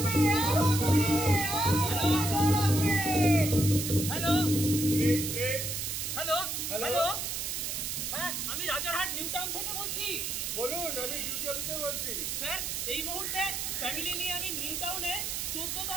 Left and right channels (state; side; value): noise; right; hiss, 3 dB below the sound